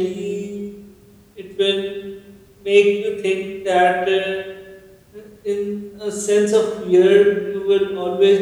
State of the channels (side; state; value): both; identical; correlation 1.00